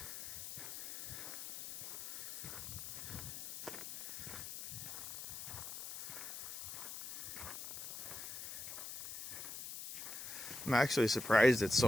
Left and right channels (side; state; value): left; noise; hiss, 8 dB below the sound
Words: I'm actually surprised it's